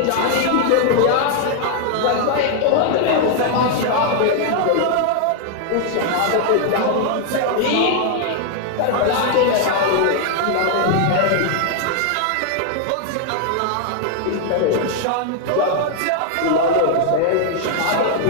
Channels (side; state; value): both; different; correlation 0.00